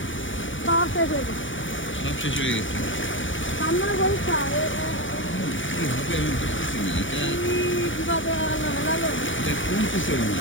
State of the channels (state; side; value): late; right; 0.56 ms